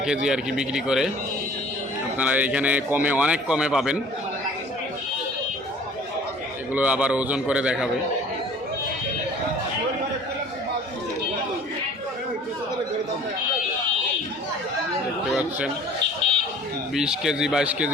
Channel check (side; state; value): both; normal; correlation 0.49